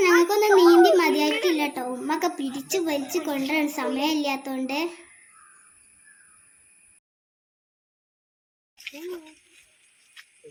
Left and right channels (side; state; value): both; identical; correlation 1.00